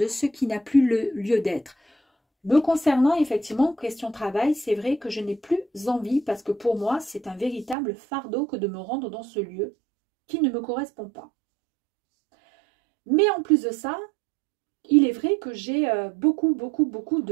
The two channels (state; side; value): drops out; left; at 7.8 s